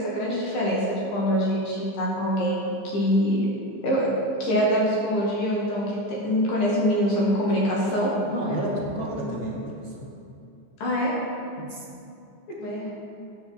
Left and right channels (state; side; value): late; right; 15 ms